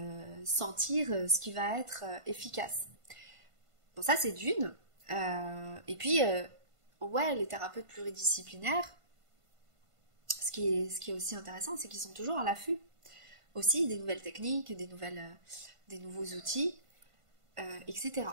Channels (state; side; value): late; left; 1.5 ms